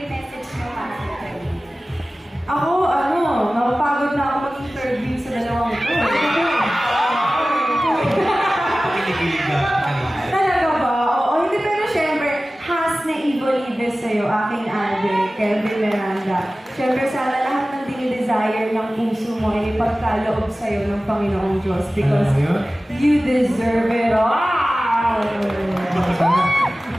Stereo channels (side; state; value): both; normal; correlation 0.96